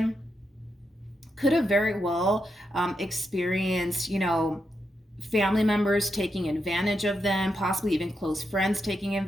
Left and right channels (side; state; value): both; normal; correlation 0.84